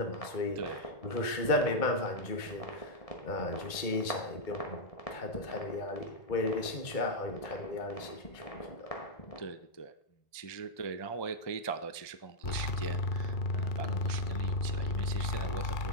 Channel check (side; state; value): right; late; 2.2 ms